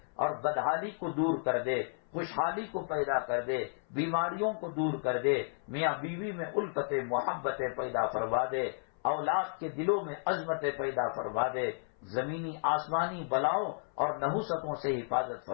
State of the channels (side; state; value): right; silent; 56 dB below the other